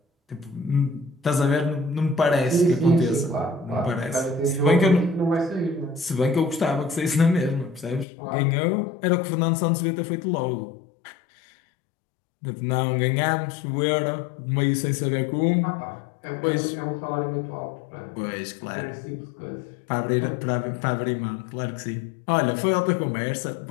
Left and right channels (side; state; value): right; drops out; at 8.1 s